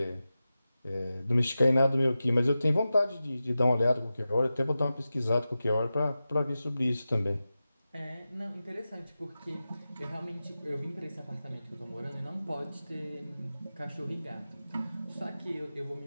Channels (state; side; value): inverted; both; correlation -0.93